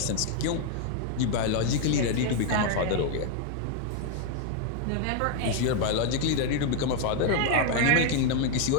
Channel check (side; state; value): both; different; correlation 0.01